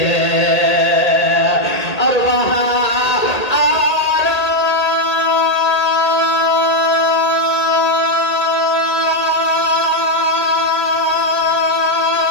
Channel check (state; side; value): late; right; 1.8 ms